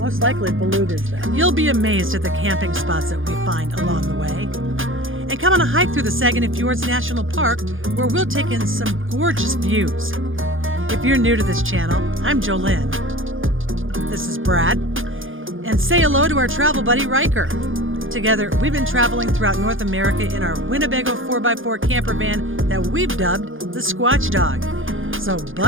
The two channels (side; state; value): left; late; 0.58 ms